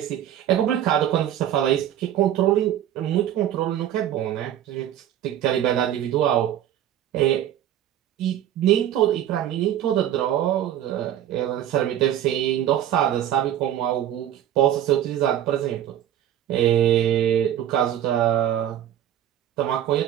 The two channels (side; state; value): left; quieter; 11.2 dB